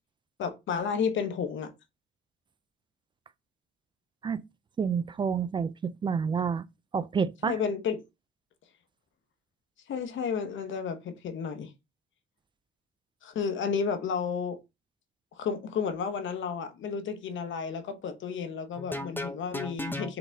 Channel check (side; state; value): both; normal; correlation 0.33